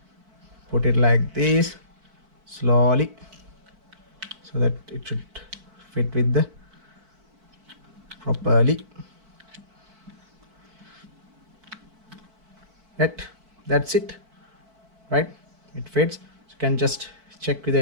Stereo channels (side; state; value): left; late; 4.5 ms